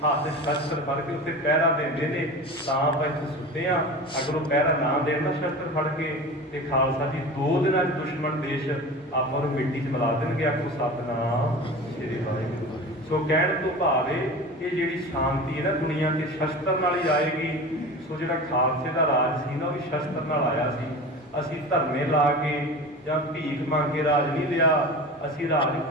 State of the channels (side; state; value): both; normal; correlation 0.33